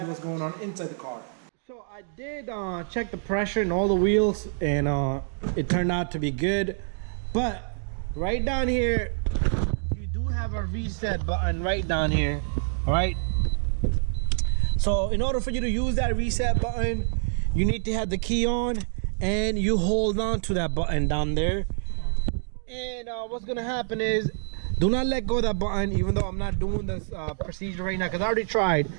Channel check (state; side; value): silent; left; digital silence